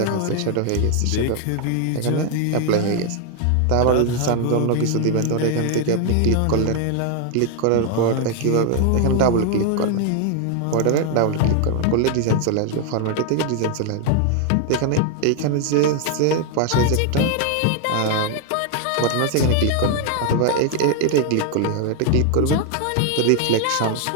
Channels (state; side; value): different; both; correlation 0.00